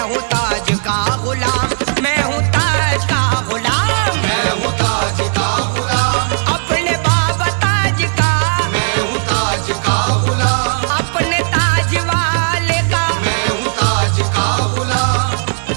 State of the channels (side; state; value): left; silent; digital silence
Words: ताज का गुलाम, मैं हूँ ताज का गुलाम, मैं हूँ ताज का गुलाम, अपने बाबा ताज का, मैं हूँ ताज का गुलाम, अपने ताज वाले का। मैं हूँ ताज का गुलाम,